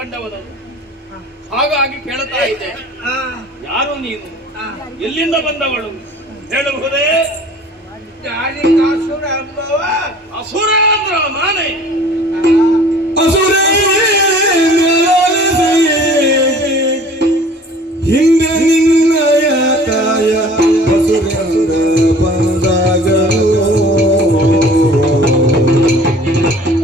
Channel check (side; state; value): both; normal; correlation 0.48